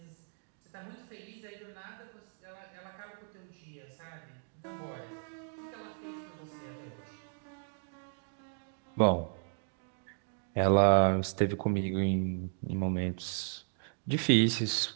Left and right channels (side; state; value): left; silent; 55 dB below the other